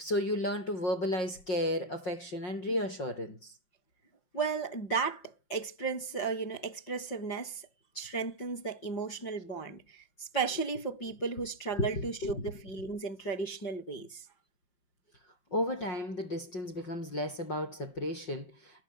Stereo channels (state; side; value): late; right; 5.6 ms